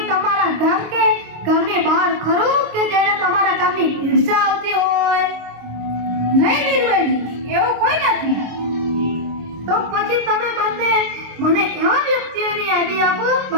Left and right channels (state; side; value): late; left; 26 ms